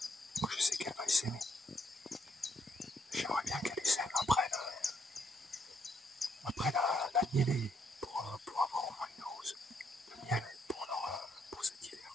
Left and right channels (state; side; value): normal; both; correlation 0.73